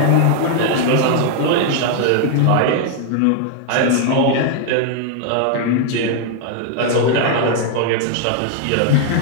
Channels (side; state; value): both; different; correlation 0.00